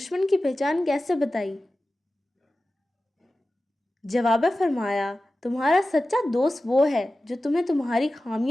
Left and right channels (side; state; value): both; normal; correlation 0.95